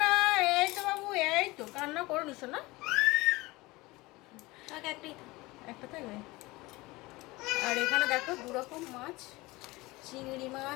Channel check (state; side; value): quieter; right; 21.6 dB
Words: এই তো বাবু, এই তো কান্না করুন সোনা, একটা থাকবে। আর এখানে দেখো দুরকম মাছ, চিংড়ি